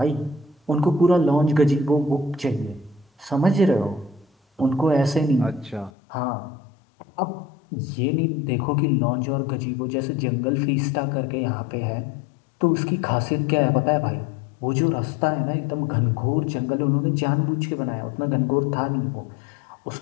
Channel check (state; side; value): drops out; right; at 5.9 s